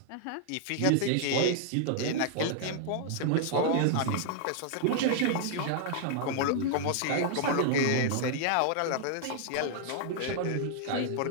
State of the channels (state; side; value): different; both; correlation -0.01